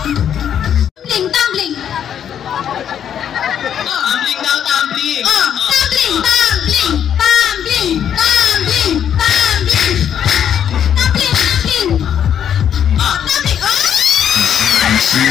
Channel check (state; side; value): quieter; right; 9.1 dB